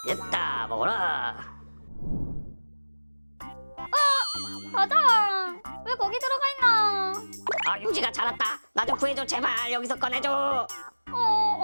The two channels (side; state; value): both; inverted; correlation -1.00